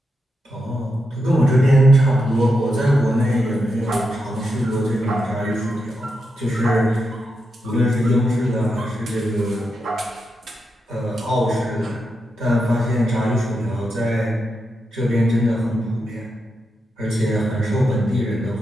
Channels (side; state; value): both; normal; correlation 0.85